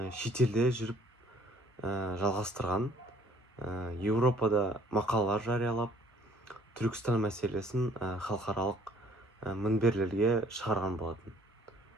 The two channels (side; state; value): both; normal; correlation 0.58